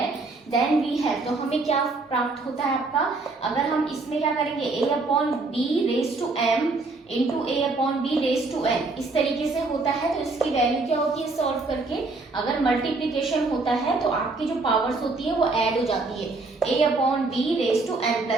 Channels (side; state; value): left; quieter; 3.5 dB